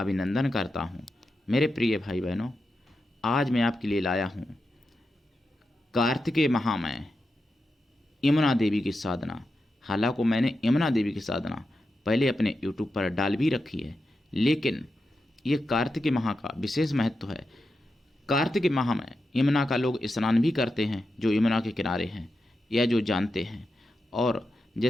करता हूं। मेरे प्रिय भाई बहनों, आज मैं आपके लिए लाया हूं कार्तिकेय महामय यमुना देवी की साधना। हालांकि मैंने यमुना देवी की साधना पहले अपने YouTube पर डाल भी रखी है, लेकिन ये कार्तिकेय माह का विशेष महत्व है। कार्तिक माह में यमुना का लोग स्नान भी करते हैं, जो यमुना के किनारे हैं या जो जानते हैं। और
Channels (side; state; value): both; normal; correlation 0.89